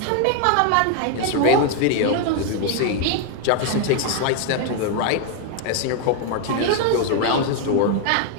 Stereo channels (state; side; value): different; both; correlation 0.00